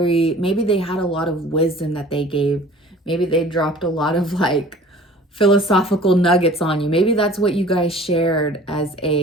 they had a lot of wisdom that they gave. Maybe they dropped a lot of like philosophical nuggets on you. Maybe that's what you guys shared as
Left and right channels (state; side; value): normal; both; correlation 0.47